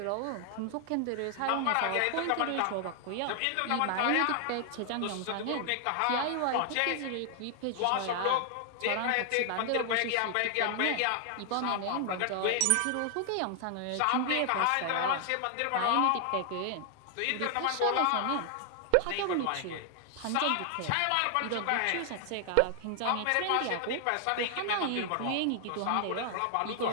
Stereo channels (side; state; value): both; different; correlation 0.00